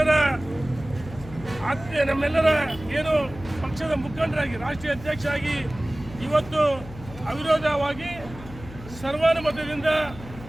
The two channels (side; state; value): left; noise; hum, 15 dB below the sound